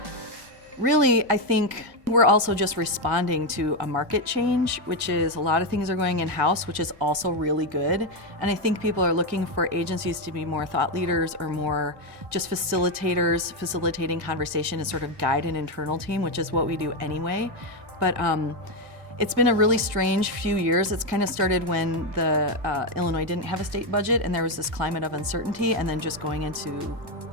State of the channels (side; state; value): left; late; 1.8 ms